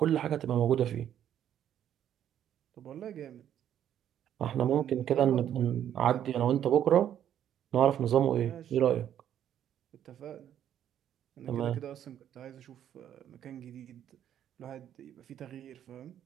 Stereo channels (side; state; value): left; quieter; 10.3 dB